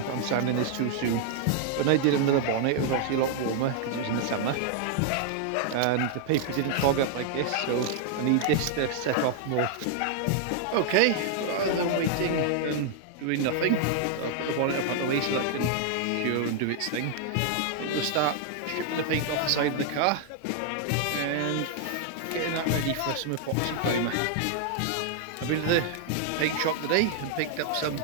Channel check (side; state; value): both; different; correlation 0.00